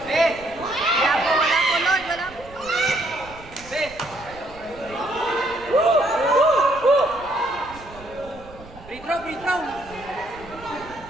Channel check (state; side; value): noise; right; rumble, 19 dB below the sound